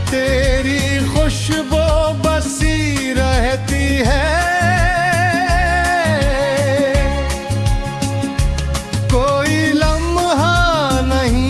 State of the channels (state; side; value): identical; both; correlation 1.00